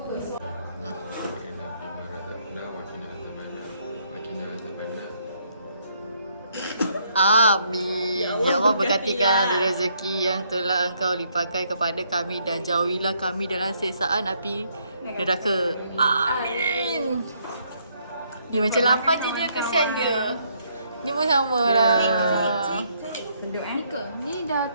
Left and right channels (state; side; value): inverted; both; correlation -0.71